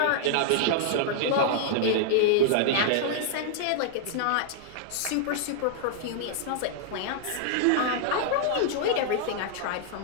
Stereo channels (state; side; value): different; both; correlation -0.01